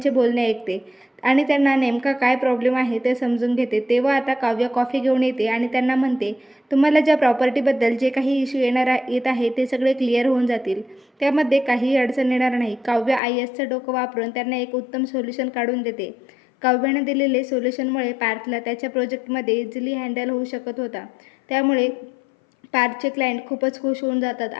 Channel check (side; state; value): right; drops out; at 13.2 s